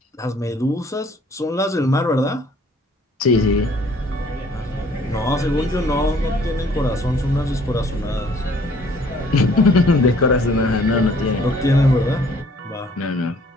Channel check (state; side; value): normal; both; correlation 0.58